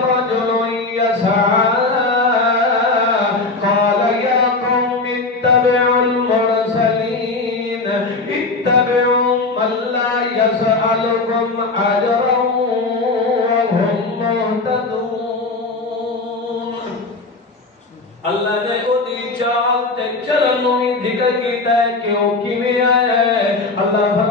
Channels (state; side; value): quieter; right; 3.5 dB